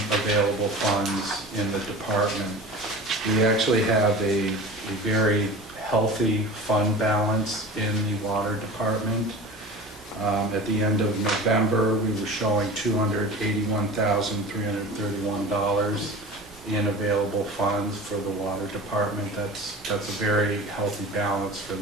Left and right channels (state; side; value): normal; both; correlation 0.36